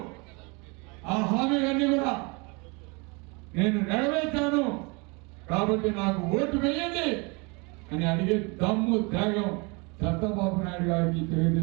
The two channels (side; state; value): left; quieter; 29.6 dB